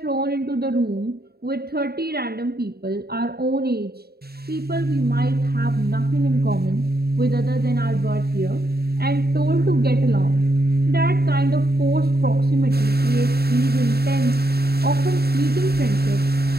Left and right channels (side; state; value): left; late; 0.46 ms